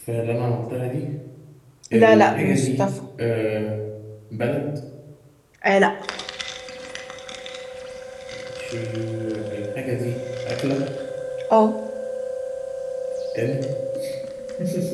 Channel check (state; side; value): identical; both; correlation 1.00